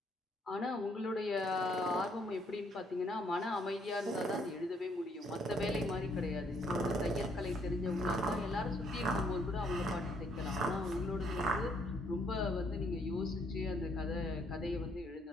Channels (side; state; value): both; normal; correlation 0.68